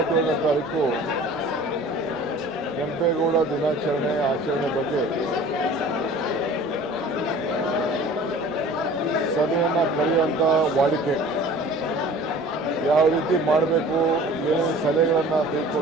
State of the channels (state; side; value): normal; both; correlation 0.45